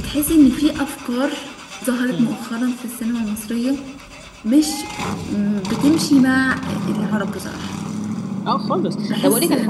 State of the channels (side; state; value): both; identical; correlation 1.00